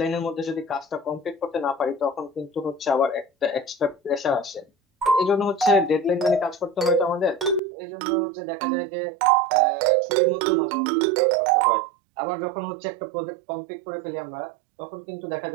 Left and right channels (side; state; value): left; drops out; at 7.6 s